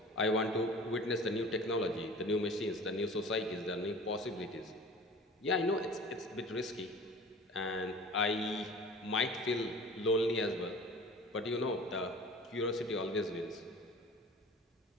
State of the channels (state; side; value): normal; both; correlation 0.41